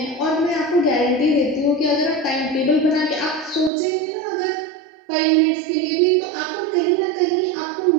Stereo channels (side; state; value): left; drops out; at 3.7 s